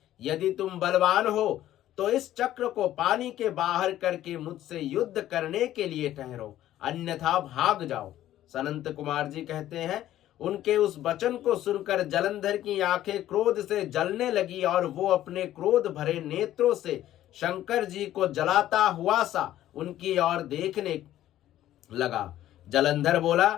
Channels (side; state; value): right; quieter; 13.1 dB